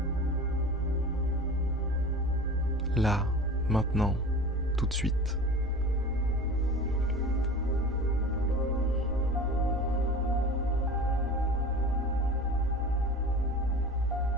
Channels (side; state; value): right; noise; rumble, 14 dB below the sound